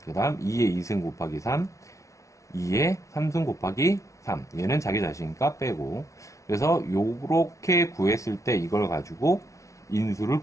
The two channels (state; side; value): late; right; 0.15 ms